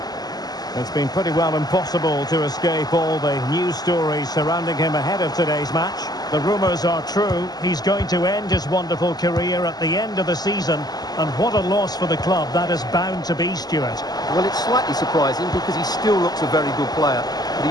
It's been pretty well impossible to escape all the news stories surrounding him ahead of today's match. The rumours are true. He's going to end his wonderful career at the end of the season. And what a loss for the club that is bound to be, Stuart. Well, it's slightly surprising because he still looks a very good player. But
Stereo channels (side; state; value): right; late; 0.19 ms